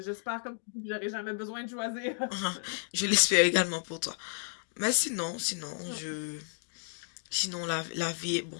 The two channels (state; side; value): silent; right; digital silence